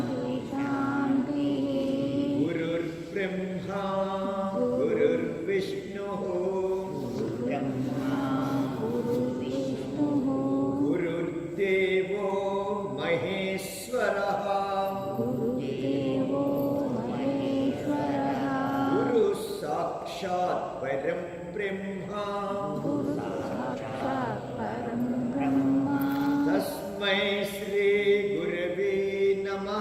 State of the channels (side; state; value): both; identical; correlation 1.00